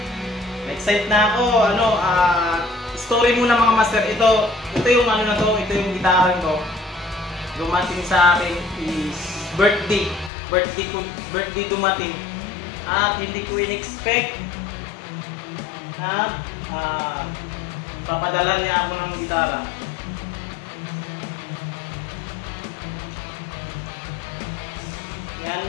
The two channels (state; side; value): drops out; right; at 10.3 s